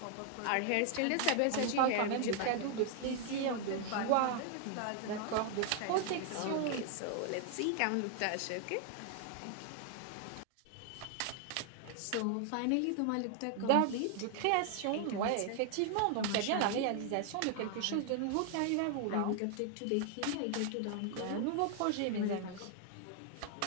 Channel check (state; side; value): different; both; correlation 0.00